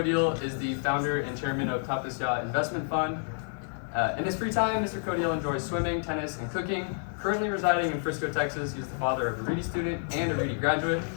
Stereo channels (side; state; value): right; silent; digital silence